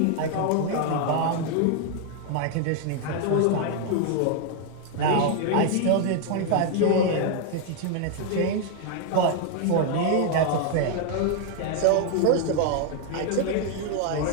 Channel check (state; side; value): different; both; correlation 0.00